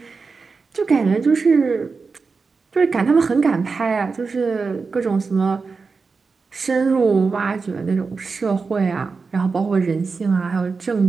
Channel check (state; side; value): quieter; left; 4.6 dB